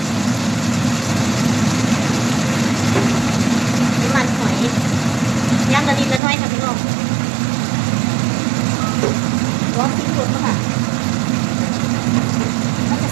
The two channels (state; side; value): drops out; left; at 6.2 s